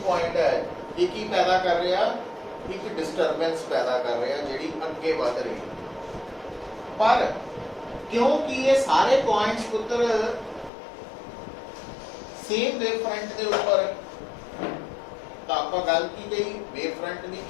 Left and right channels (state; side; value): drops out; right; at 10.7 s